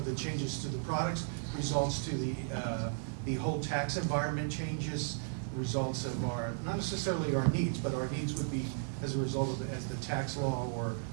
the changes to the products, results to the whole tax environment changes, results of our, not necessarily our needs, but our needs would be as a result of as the tax law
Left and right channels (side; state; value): left; silent; digital silence